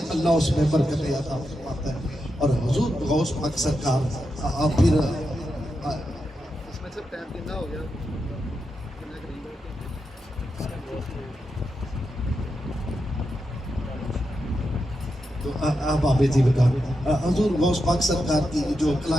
اللہ اس میں برکت عطا فرماتا ہے۔ اور حضور غوث پاک سرکار پھر تو آپ آبے جی بتا حضور غوث پاک سرکار کی جو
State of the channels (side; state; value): both; normal; correlation 0.87